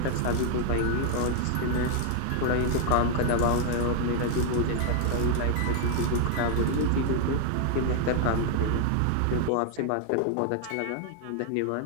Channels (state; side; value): different; both; correlation 0.00